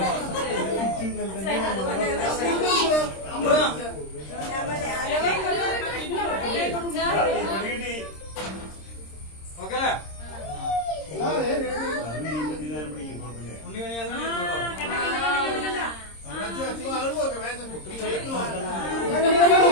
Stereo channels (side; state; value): right; late; 26 ms